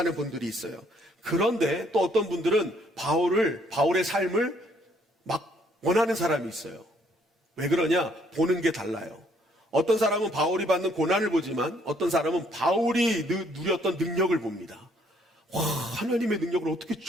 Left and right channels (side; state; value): both; normal; correlation 0.66